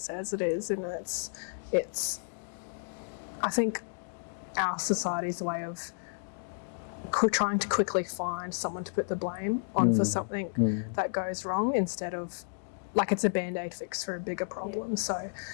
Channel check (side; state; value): right; silent; digital silence